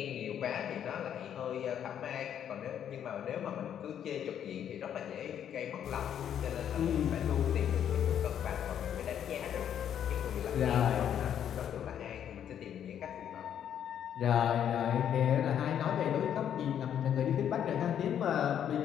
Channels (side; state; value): right; quieter; 9.5 dB